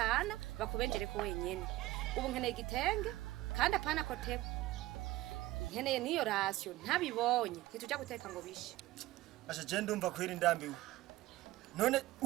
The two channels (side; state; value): left; quieter; 17.1 dB